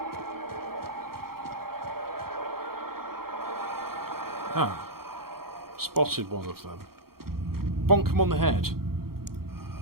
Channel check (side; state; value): left; late; 0.94 ms